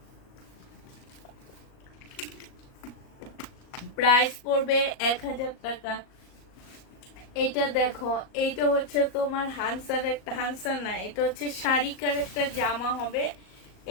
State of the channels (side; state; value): right; late; 38 ms